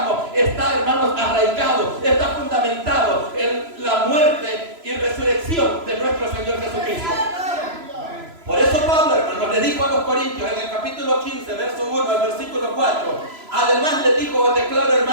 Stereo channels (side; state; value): left; late; 3.0 ms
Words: está, hermanos, arraigado, está fundamentado en la muerte y resurrección de nuestro Señor Jesucristo. Por eso Pablo, hermanos, le dijo a los corintios en el capítulo 15, verso 1 al versículo 4: además les dijo: os declaro,